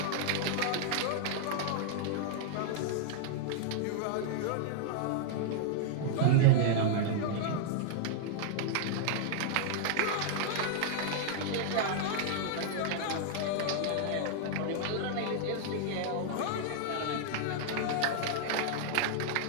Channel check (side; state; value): both; different; correlation -0.01